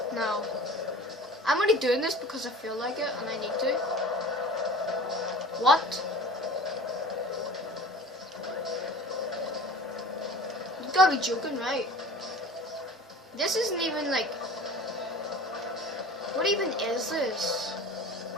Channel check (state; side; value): normal; both; correlation 0.41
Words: No, I'm only doing this because I feel like it and I need to. What? You gotta be joking, right? This isn't even like... What even is this?